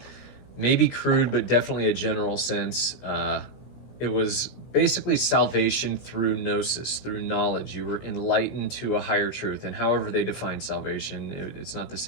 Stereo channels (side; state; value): right; late; 16 ms